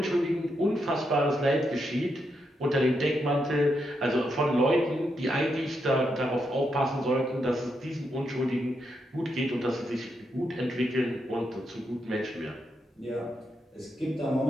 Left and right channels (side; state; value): both; normal; correlation 0.82